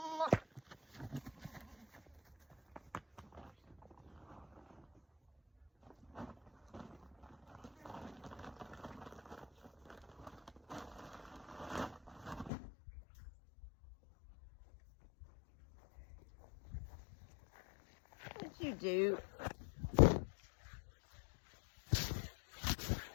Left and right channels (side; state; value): right; drops out; at 12.5 s